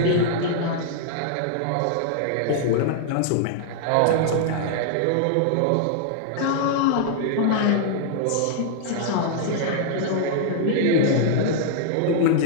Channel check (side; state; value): both; different; correlation -0.01